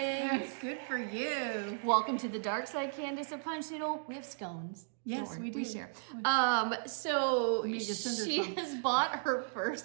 Good for you. Welcome to the dark side, Candace, of punch needle. We have scones. Yes, Don't worry, we do. share. So We need to send her she some. has bought her first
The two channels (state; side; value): silent; left; digital silence